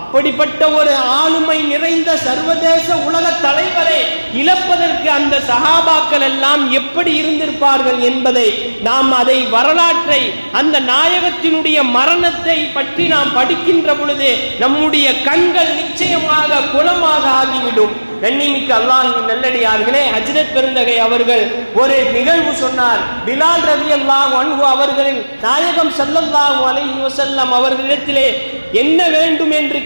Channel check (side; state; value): both; inverted; correlation -1.00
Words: ஒரு ஆளுமை நிறைந்த சர்வதேச உலக தலைவரை இழப்பதற்கு அந்த சஹாபாக்கள் எல்லாம் எப்படி இருந்திருப்பார்கள் என்பதை நாம் அதை வரலாற்றை, அந்த நாயகத்தினுடைய மரணத்தை பற்றி நாம் படிக்கின்ற பொழுது நம்முடைய கண்கள் நிச்சயமாக குளமாக ஆகிவிடும். கண்ணியமிக்க அல்லாஹ்வின் நல்லடியார்களே, ஹஜ்ரத் பெருந்தகை அவர்கள் ஒரு நிகழ்வு சொன்னார். பிலால் ரலியல்லாஹு அன்ஹு அவர்களின் நாயகம் ஸல்லல்லாஹு அலைஹி வஸல்லம் அவர்களிடத்திலே என்ன வேண்டும் என்று